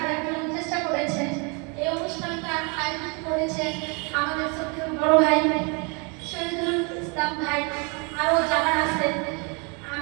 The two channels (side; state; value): left; quieter; 32.9 dB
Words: দেওয়ার জন্য চেষ্টা করেছে। এই অনুষ্ঠানটা আয়োজন করেছে আমাদের সত্যি বড় ভাই শহীদুল ইসলাম ভাই, আরও যারা আছে,